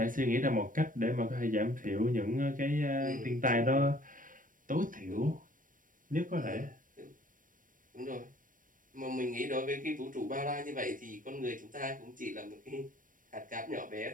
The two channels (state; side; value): late; left; 0.39 ms